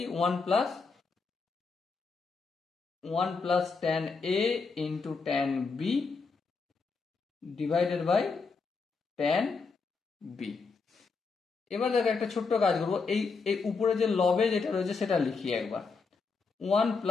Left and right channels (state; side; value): quieter; right; 4.7 dB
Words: 1 plus tan a into tan b divided by tan b। এবার দেখো একটা ছোট্ট কাজ করবো, এই উপরে যে লবে যেটা রয়েছে সেটা লিখি একবার, 1